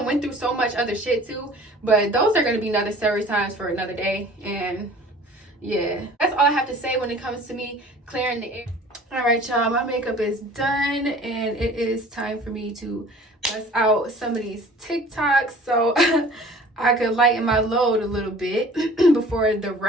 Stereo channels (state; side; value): normal; both; correlation 0.47